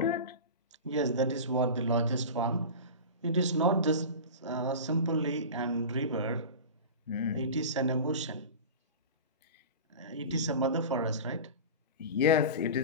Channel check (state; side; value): inverted; both; correlation -0.30